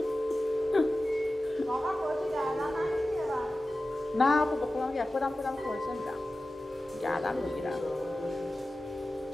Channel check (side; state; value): both; normal; correlation 0.95